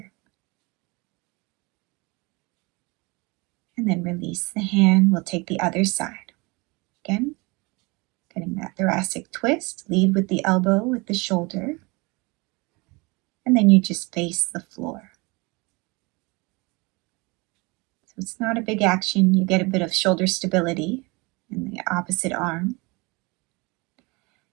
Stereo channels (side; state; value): left; quieter; 26.5 dB